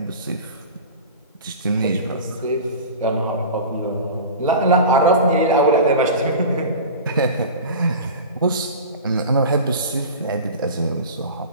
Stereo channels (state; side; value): inverted; both; correlation -0.33